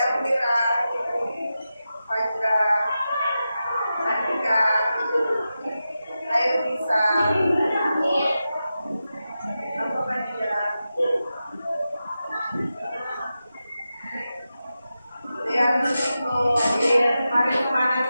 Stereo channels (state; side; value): inverted; both; correlation -0.91